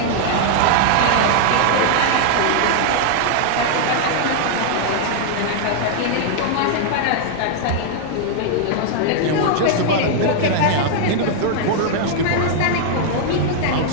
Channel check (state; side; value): different; both; correlation -0.01